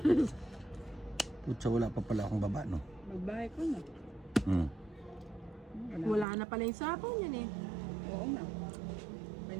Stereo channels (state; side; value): drops out; left; at 6.2 s